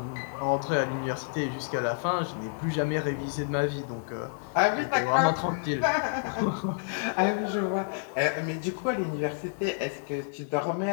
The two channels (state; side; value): silent; right; digital silence